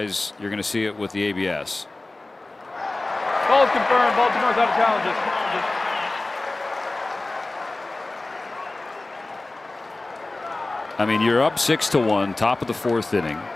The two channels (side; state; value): right; quieter; 3.0 dB